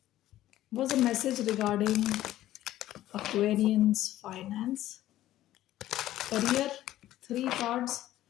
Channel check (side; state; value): right; quieter; 14.0 dB